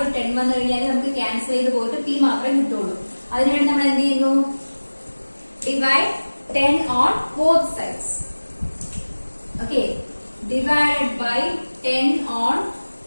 ഒരു 10 വന്നു കഴിഞ്ഞാൽ നമുക്ക് ക്യാൻസൽ ചെയ്ത് പോയിട്ട് p മാത്രമേ കിട്ടുള്ളൂ. അതിനുവേണ്ടി നമ്മൾ എന്ത് ചെയ്യുന്നു, divide 10 on both sides. Okay, divided by 10 on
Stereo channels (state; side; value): inverted; both; correlation -1.00